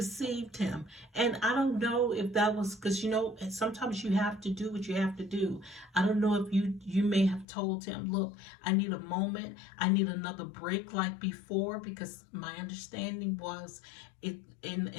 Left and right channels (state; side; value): drops out; right; at 7.5 s